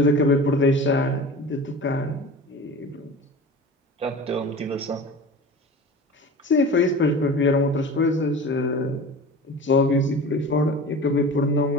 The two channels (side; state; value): both; normal; correlation 0.35